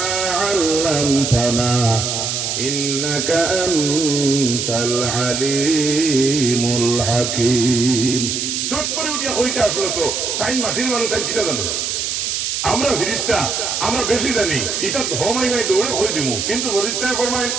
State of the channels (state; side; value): noise; right; hiss, 1 dB below the sound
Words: علمتنا إنك أنت العليم الحكيم চট করে উঠিয়া হইতে আসলো তো তাই মাটির মানুষ তাই কিটা জানো আমরা ফিরিস্তা আমরা বেশি জানি এটা ধমাই নাই দৌড়ে হই দিমু কিন্তু ফিরিস্তা ফরমায়